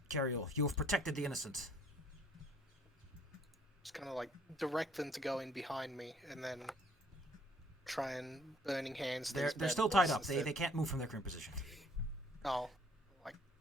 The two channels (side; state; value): both; normal; correlation 0.61